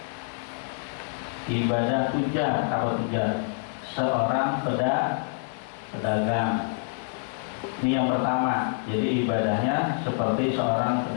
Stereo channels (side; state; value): right; silent; 60 dB below the other